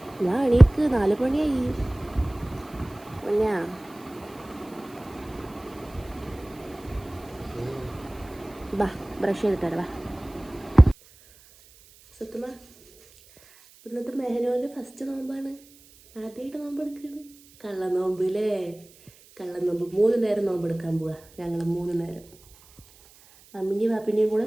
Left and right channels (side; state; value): right; noise; hiss, 26 dB below the sound